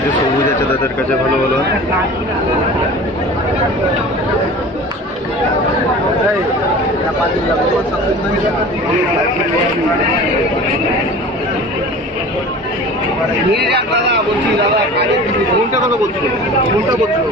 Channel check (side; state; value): both; normal; correlation 0.39